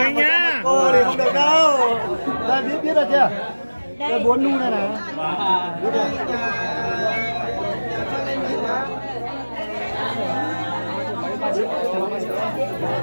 nhá. Cô thì không được đâu. Đây biết rồi chưa? Đây 4 nu này này. Biết rồi.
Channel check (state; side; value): inverted; both; correlation -1.00